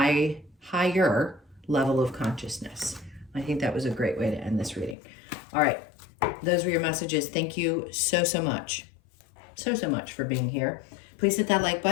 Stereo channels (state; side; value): drops out; right; at 5.0 s